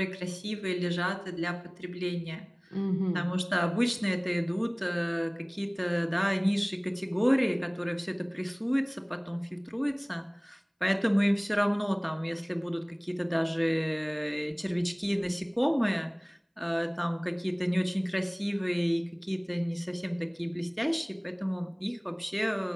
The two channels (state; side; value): identical; both; correlation 1.00